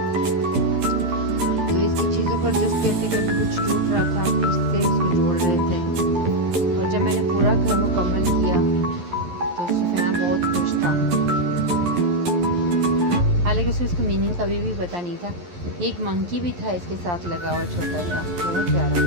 तो इसकी चीज़ों पर जस्ट करते कभी कुछ टूट रहा था, फिर से उसको जोड़ रहे थे। और जब मैंने पूरा घर मुकम्मल किया तो सुफियान बहुत खुश था। हालांकि उसे इसको मीनिंग कभी भी पता नहीं था। एक मंकी भी था इसके साथ लगा हुआ छोटा सा, बहुत प्यारा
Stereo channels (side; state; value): left; late; 11 ms